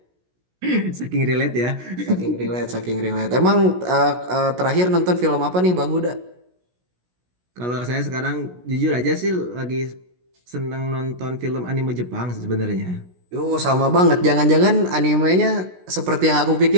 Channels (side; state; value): left; late; 16 ms